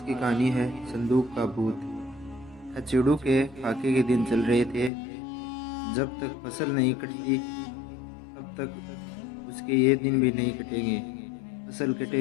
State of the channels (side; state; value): right; drops out; at 4.9 s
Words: कहानी है संदूक का भूत। खचेड़ू के फाके के दिन चल रहे थे। जब तक फसल नहीं कटती तब तक उसके ये दिन भी नहीं कटेंगे। फसल